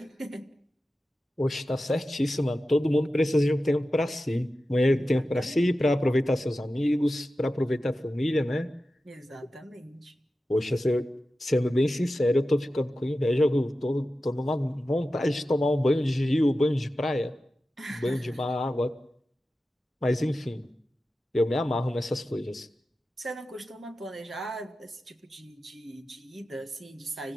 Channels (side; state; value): both; normal; correlation 0.93